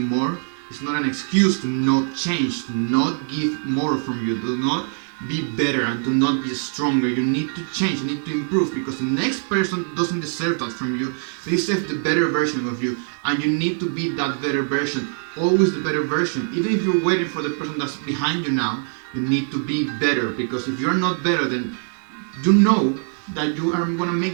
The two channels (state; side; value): silent; left; 60 dB below the other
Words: it's not an excuse to not change, to not give more from you, to not be better, and to not be stronger. You need to change, you need to improve, because the next person doesn't deserve that from you. They deserve the better version of you, and you need to be that better version, always the better version. Even if you're waiting for the person that's behind you now, you need to be better, because if you're not better, then you know that you are going to